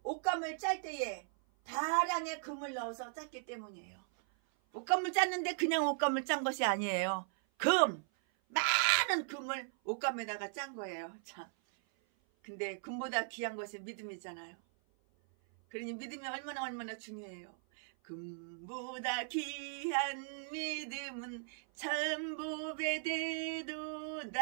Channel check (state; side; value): silent; left; 53 dB below the other